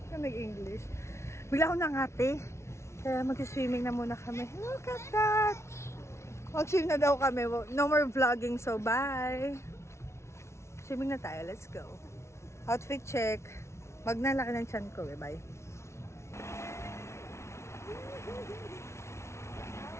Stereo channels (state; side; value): late; right; 0.13 ms